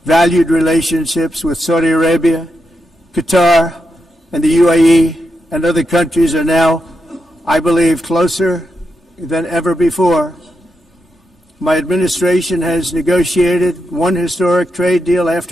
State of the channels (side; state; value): both; normal; correlation 0.85